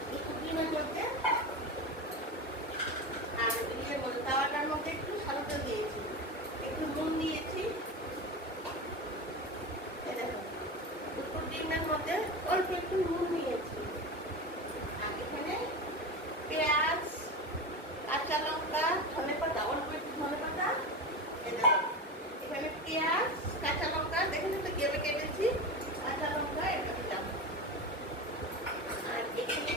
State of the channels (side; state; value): both; normal; correlation 0.24